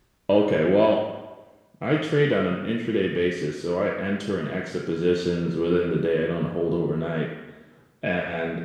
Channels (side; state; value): both; identical; correlation 1.00